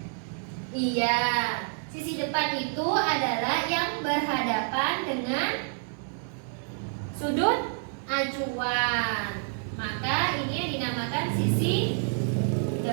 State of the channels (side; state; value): left; silent; 59 dB below the other